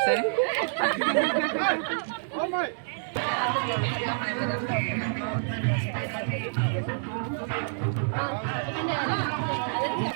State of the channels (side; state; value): left; silent; digital silence